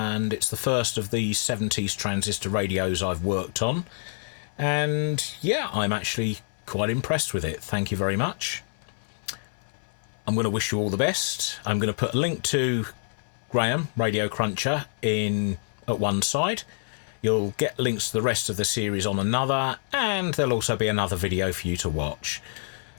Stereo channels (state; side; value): silent; right; 60 dB below the other